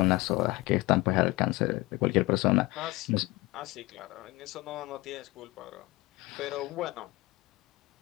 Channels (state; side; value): quieter; right; 21.3 dB